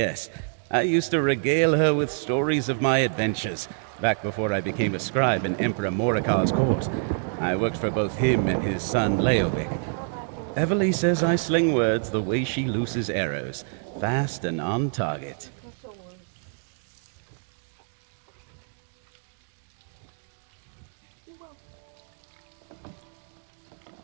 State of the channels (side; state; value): left; silent; 60 dB below the other